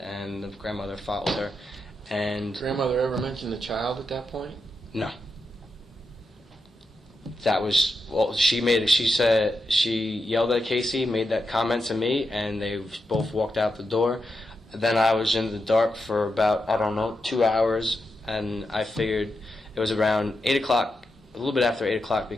the grandmother followed her. And grandmother ever mentioned the child at that point? no. That was she said she yelled at Casey, made that comment to me, and they both walked out the door. Then I was in the dark for about 2 hours, and I figured it was around 8 o'clock, a little bit after 8 o'clock,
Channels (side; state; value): both; normal; correlation 0.87